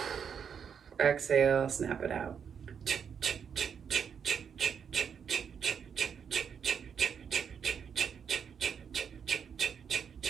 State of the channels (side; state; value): left; quieter; 7.2 dB